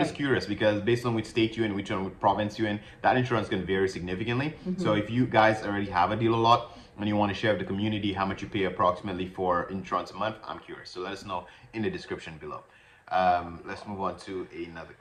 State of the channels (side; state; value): both; identical; correlation 1.00